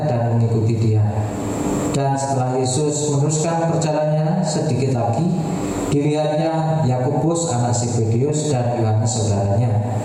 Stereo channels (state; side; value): identical; both; correlation 1.00